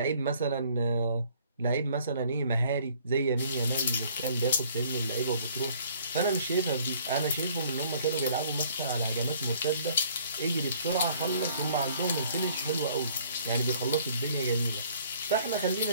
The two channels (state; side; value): inverted; both; correlation -0.58